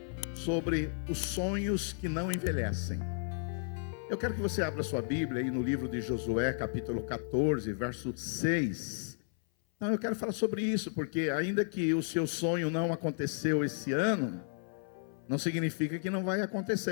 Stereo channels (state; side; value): silent; right; 56 dB below the other